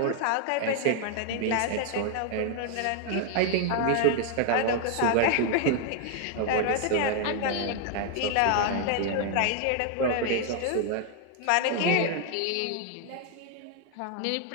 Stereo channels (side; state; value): both; different; correlation 0.00